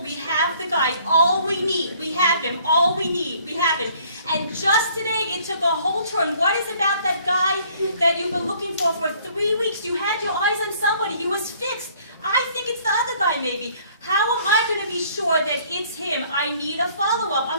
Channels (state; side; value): inverted; both; correlation -0.59